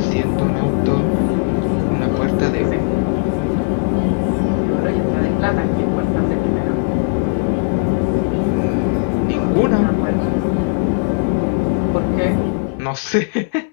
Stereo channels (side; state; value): right; silent; digital silence